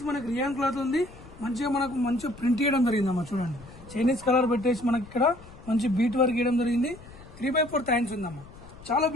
మనకి రియాన్ క్లాత్ ఉంది. మంచిగా ప్రింట్ చేయడం జరిగిందమ్మా. చూడండి, చైనీస్ కలర్ పెట్టేసి మనకి ఇక్కడ మంచి బీట్ వర్క్ చేయడం జరిగింది. 3x4 హ్యాండ్స్ ఉందమ్మా. చాలా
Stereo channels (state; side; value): noise; left; rumble, 19 dB below the sound